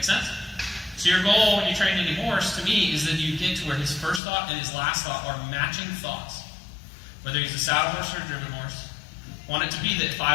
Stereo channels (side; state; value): right; drops out; at 4.2 s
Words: sense? So your goal when you train any horse, to me, is that you get to where his first thought and his last thought are matching thoughts. Whether he's a saddle horse or a driven horse. I want it to be that if